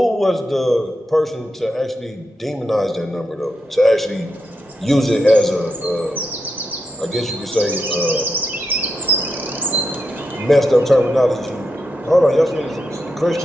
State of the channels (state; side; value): normal; both; correlation 0.85